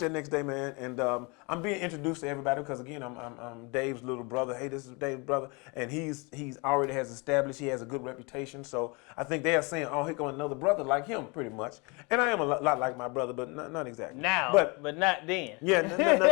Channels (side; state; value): right; quieter; 29.4 dB